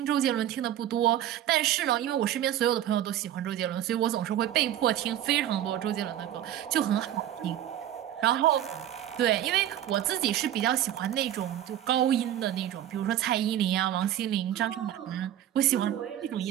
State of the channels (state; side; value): quieter; left; 11.7 dB